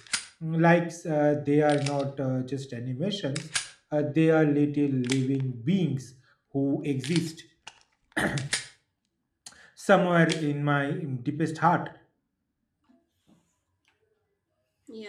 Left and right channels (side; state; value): both; identical; correlation 1.00